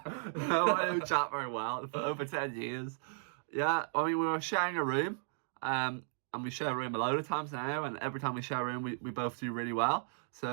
no, I know Jack very well for over 10 years. Yeah, I mean, we were sharing a room, and we share a room a load of times now, and every time we share a room, we both do really well.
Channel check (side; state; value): left; silent; digital silence